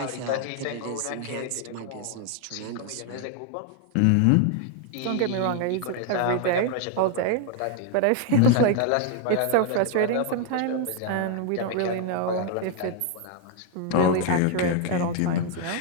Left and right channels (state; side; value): different; both; correlation 0.00